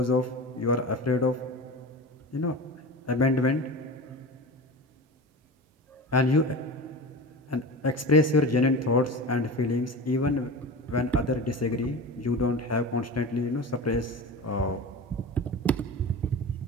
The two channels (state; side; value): normal; both; correlation 0.30